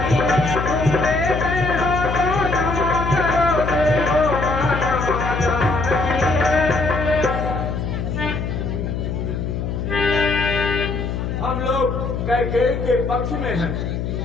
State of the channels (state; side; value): noise; left; hum, 3 dB below the sound